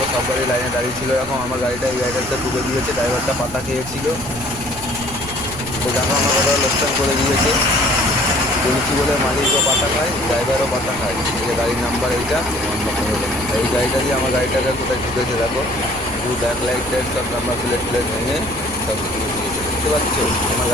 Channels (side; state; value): right; noise; rumble, 15 dB below the sound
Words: সব গাড়ি লাইনে দাঁড়িয়ে ছিল, এখন আমার গাড়িটা এই গাড়িটাতে ঢুকে দিয়েছে। ড্রাইভারটা পাতা খেয়েছিল, তো দেখো আমার কথা লোকসান করে দিয়েছে। বলেছি বলে মালিকও পাতা খায়, ড্রাইভারও পাতা খায়। এই যে গাড়ির নাম্বার এইটা, এই গাড়িটা দিয়ে আমার গাড়িটাকে কোথায় ঢুকেছে দেখো। পুরো ব্যাক লাইট টাইট সব নাম্বার প্লেট প্লেট ভেঙে সব কিছু দিয়েছে। দেখতে পাচ্ছ আমার